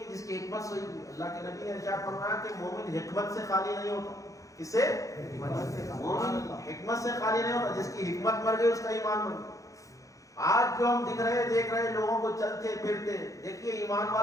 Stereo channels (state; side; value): late; right; 0.16 ms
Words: جس کی حکمت سوئی ہوئی. اللہ کے نبی نے ارشاد فرمایا کہ مومن حکمت سے خالی نہیں ہوتا. کس سے؟ مومن حکمت سے خالی نہیں ہوتا. جس کی حکمت مر گئی اس کا ایمان مر گیا. آج جو ہم دیکھ رہے لوگوں کو چلتے پھرتے, دیکھیے ایمان